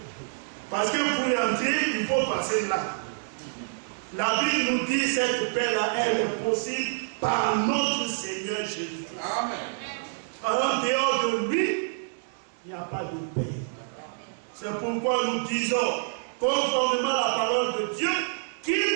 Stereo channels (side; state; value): left; silent; digital silence